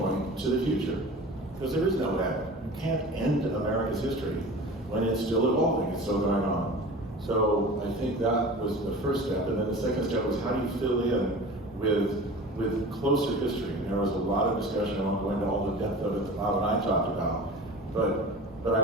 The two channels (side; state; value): both; normal; correlation 0.37